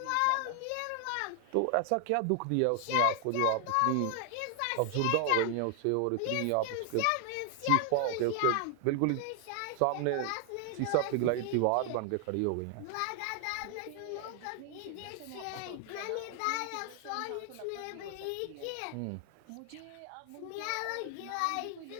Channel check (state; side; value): different; both; correlation 0.00